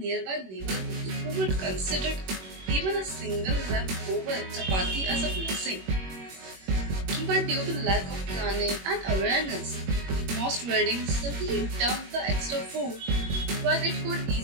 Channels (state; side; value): late; left; 21 ms